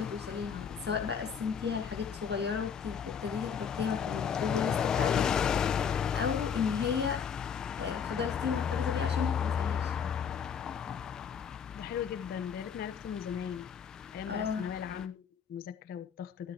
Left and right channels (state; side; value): quieter; right; 7.0 dB